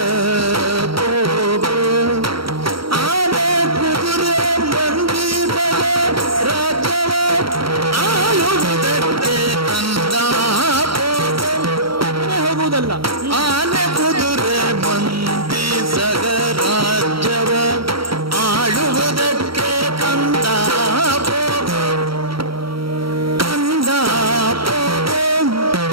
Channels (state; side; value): late; left; 0.75 ms